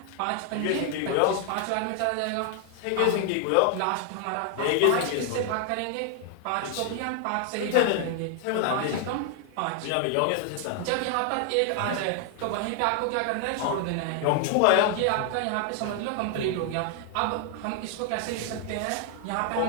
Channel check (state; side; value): different; both; correlation 0.00